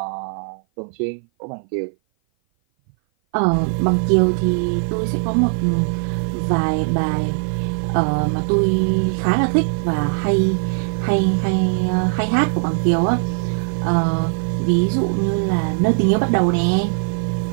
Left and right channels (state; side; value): silent; left; 57 dB below the other